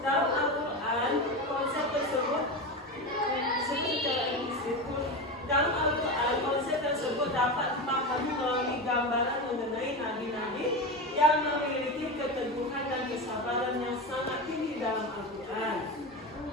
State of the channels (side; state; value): both; normal; correlation 0.21